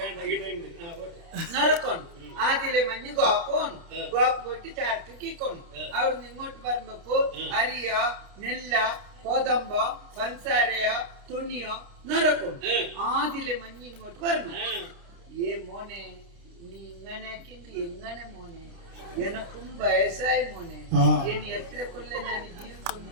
നറക്കണം ആദ്യലെ മഞ്ഞ് ഗോക്കോണം ഗോക്ക് പോയിട്ട് ചരക്ക് കിക്കോണം അവിടുന്ന് ഇങ്ങോട്ട് വരുമ്പോ അരിയ നെല്ല കോതമ്പ പഞ്ചസാരയ തുണിയോ നറക്കും ആദ്യലെ മഞ്ഞ് ഇങ്ങോട്ട് വരണം ഏ മോനെ നീ ഇങ്ങനെ എങ്ങനെ മോനെ എനക്കും വയസ്സായി മോനെ ഇനി എത്ര കൊല്ലം ഞാൻ ജീവിതം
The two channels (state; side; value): late; left; 29 ms